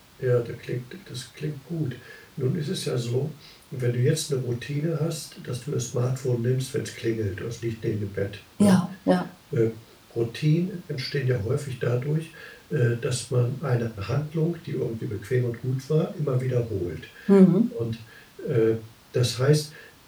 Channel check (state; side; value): identical; both; correlation 1.00